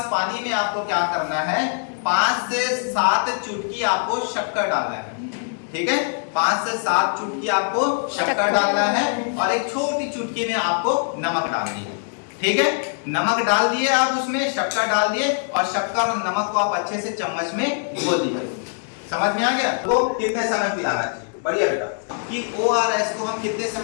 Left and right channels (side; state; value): right; silent; digital silence